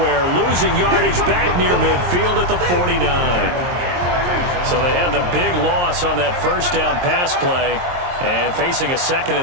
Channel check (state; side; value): late; left; 23 ms